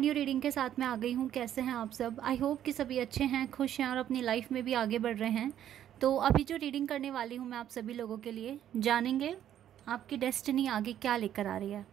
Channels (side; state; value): left; quieter; 10.9 dB